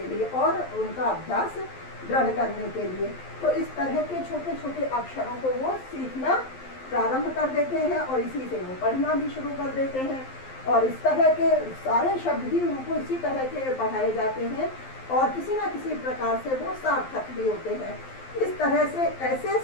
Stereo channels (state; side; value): late; right; 11 ms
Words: लिए और उनका अभ्यास दृढ़ करने के लिए। तो इस तरह के छोटे छोटे अक्षरों को वो सीखना प्रारंभ कर देते हैं और इसी से वो पढ़ना भी शुरू कर देते हैं। और इस तरह के सारे शब्द भी उनको इसी तरह के पढ़ाए जाते हैं और किसी न किसी प्रकार से वो सार्थक भी होते हैं। इस तरह से ऐसे